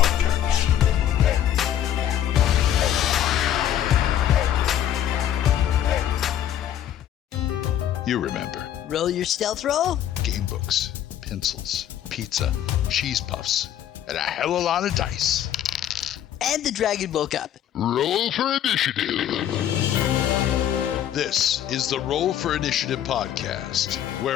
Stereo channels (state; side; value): quieter; right; 10.8 dB